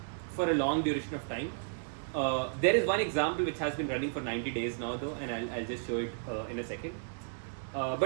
a long duration of time. There is one example which has been running for 90 days now though, and I'll just show it in a second.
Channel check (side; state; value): left; silent; digital silence